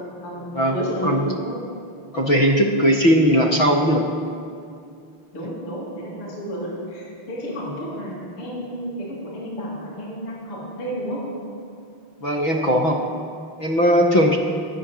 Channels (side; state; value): right; late; 6.1 ms